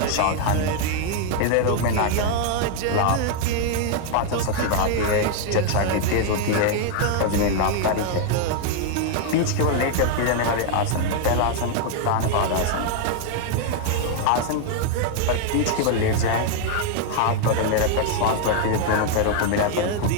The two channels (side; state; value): both; different; correlation 0.00